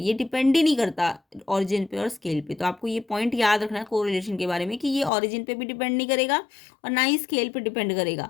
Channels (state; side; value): drops out; right; at 5.1 s